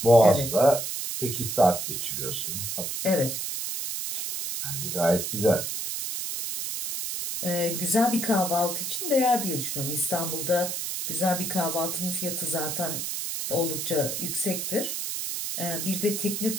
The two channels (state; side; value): noise; right; hiss, 3 dB below the sound